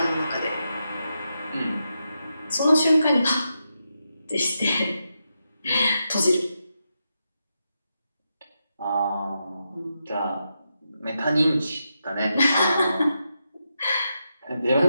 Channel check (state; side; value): inverted; both; correlation -0.86